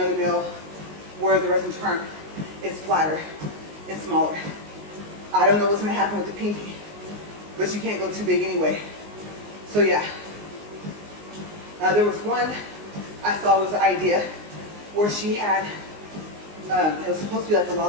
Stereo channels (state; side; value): late; left; 19 ms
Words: nail where the resin turn is flatter and smaller. I don't know what's gonna happen with the pinky, but you can't go too big anyway. So yeah. There was one I saw was an idea where she had, it was supposed to be like a